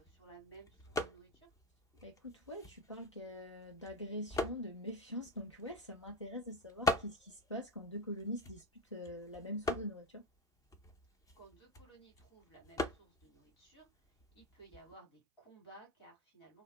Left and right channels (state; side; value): normal; both; correlation 0.20